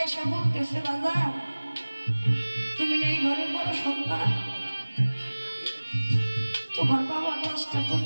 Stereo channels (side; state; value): both; inverted; correlation -1.00